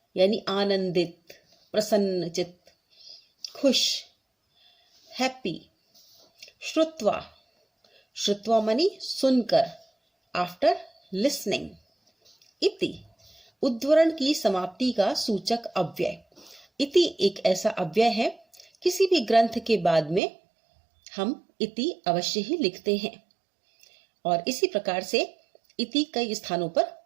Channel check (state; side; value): drops out; left; at 20.2 s